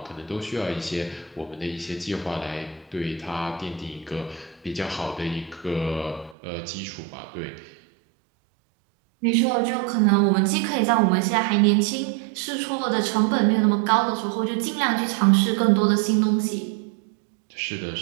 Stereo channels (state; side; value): drops out; left; at 6.4 s